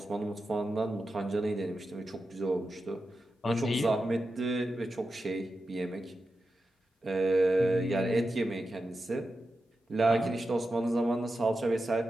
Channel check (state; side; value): normal; both; correlation 0.90